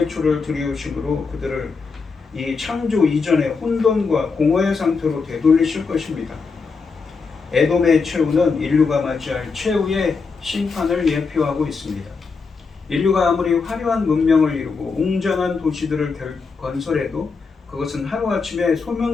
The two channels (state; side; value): quieter; right; 4.8 dB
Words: 줄을 들이우심으로 그들을 이 창조 이전의 혼돈과 공허의 상태로 되돌리실 것입니다. 에돔의 최후는 인류가 맞이할 최후의 심판을 예표하고 있습니다. 인류가 아무리 화려한 문명을 이루고 웅장한 도시들을 건설해도 그것은 하루아침에